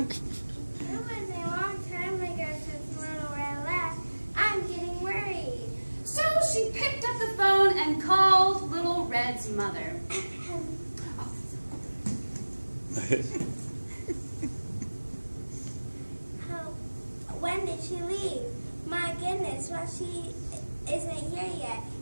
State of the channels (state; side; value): inverted; both; correlation -1.00